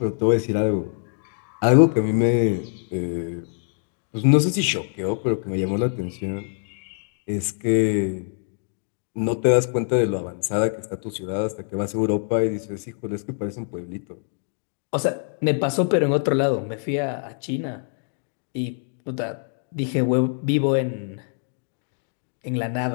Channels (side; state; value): right; silent; digital silence